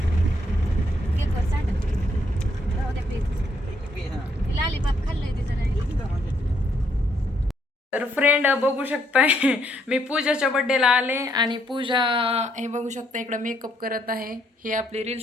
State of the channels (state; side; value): normal; both; correlation 0.72